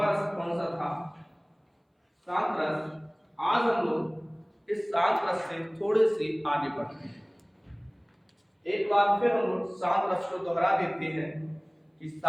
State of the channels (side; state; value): both; identical; correlation 1.00